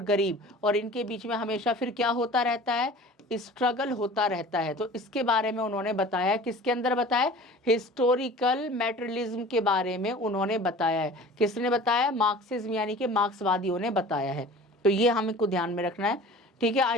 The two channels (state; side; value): normal; both; correlation 0.42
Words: गरीब। और इनके बीच में हमेशा फिर क्या होता रहता है, स्ट्रगल होता रहता है। तो इसके बारे में उन्होंने बताया, किसके अंदर बताया, हिस्टोरिकल मैटेरियलिज्म के बारे में उन्होंने बताया है। किसने बताया, मार्क्सिज्म यानी कि मार्क्सवादियों ने बताया है। तो ये हमको ध्यान में रखना है, ठीक है।